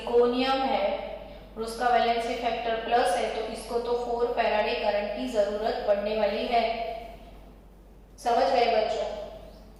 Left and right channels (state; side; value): identical; both; correlation 1.00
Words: है और उसका वैलेंसी फैक्टर प्लस है, तो इसको तो 4 फैराडे करंट की जरूरत पड़ने वाली है। समझ गए बच्चों?